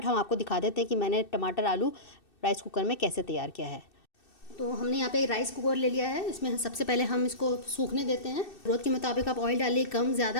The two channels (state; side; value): late; right; 2.6 ms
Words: हम आपको दिखा देते हैं कि मैंने टमाटर आलू राइस कुकर में कैसे तैयार किया है। तो हमने यहाँ पे राइस कुकर ले लिया है। इसमें सबसे पहले हम इसको सूखने देते हैं। ज़रूरत के मुताबिक आप ऑयल डालिए, कम